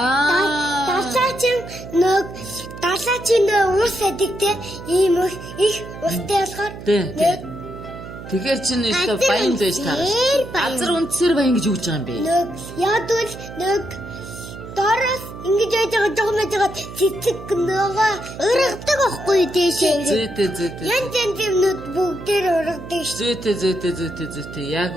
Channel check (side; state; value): right; noise; hum, 13 dB below the sound